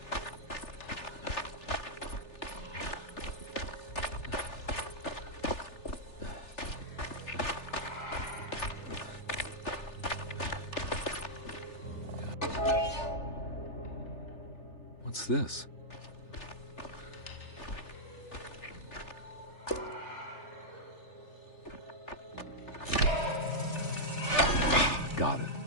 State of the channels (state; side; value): late; right; 3.4 ms